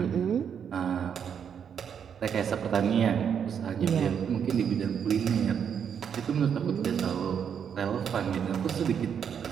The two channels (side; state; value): left; quieter; 7.7 dB